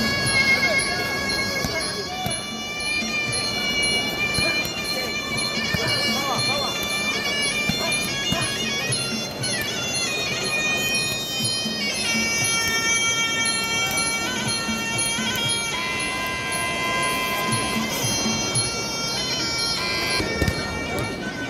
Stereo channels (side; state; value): both; identical; correlation 1.00